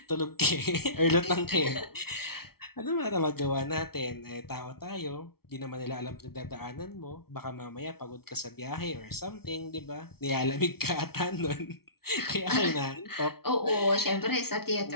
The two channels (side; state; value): right; late; 0.95 ms